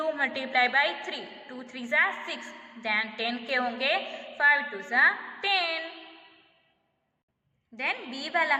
मल्टीप्लाई बाय 3, 2 3 सा 6। देन 10 के होंगे 5 2 सा 10। देन बी वाला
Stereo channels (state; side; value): identical; both; correlation 1.00